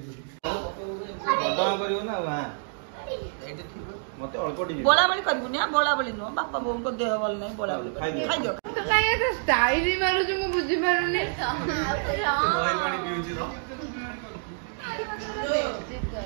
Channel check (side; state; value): left; silent; digital silence